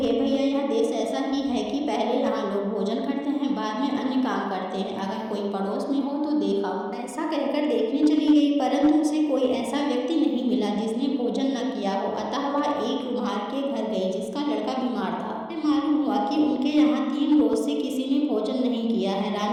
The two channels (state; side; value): identical; both; correlation 1.00